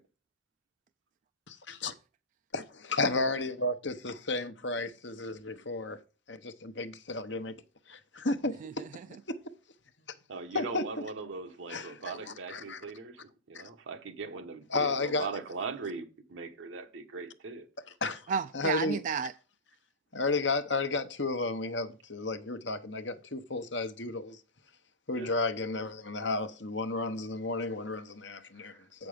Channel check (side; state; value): both; normal; correlation -0.17